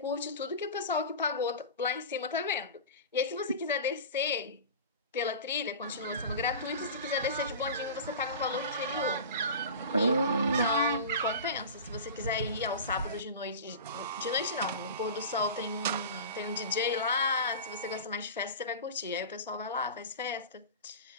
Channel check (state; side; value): inverted; both; correlation -0.31